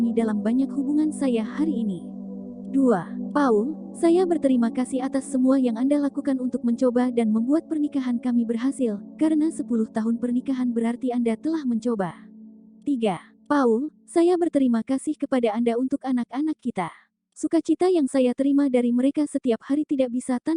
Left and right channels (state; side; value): identical; both; correlation 1.00